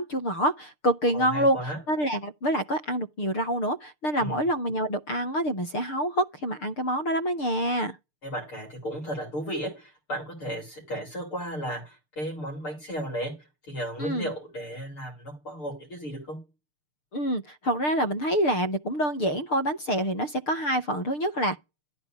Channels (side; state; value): right; late; 6.7 ms